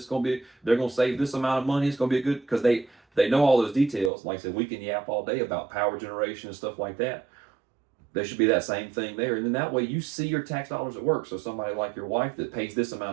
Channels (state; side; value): drops out; left; at 4.1 s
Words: going to save this amount of money. It's going to be good because they know all those details. Like I said, we can yap all day about power generation and stuff like that. There should be that same thing there. And then that way you see your tax dollars at work. So somebody like your wife that pays this